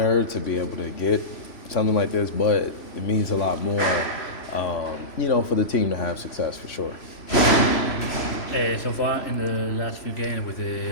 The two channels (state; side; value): late; right; 3.0 ms